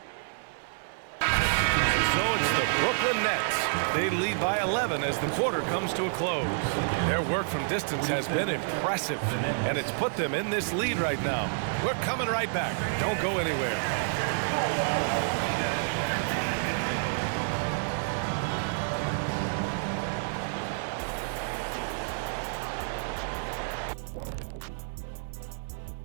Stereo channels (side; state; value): left; silent; 59 dB below the other